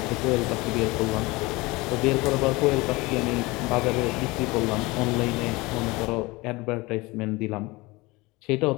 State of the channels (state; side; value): quieter; right; 22.9 dB